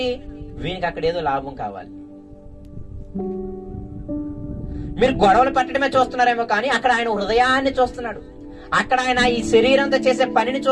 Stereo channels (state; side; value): identical; both; correlation 1.00